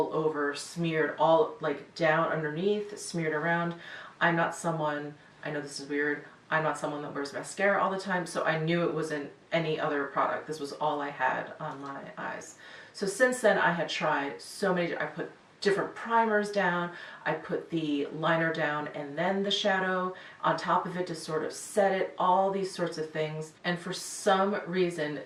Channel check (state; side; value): identical; both; correlation 1.00